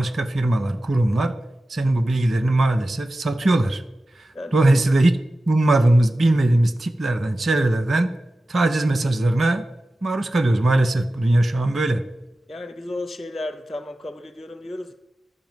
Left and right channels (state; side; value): normal; both; correlation 0.95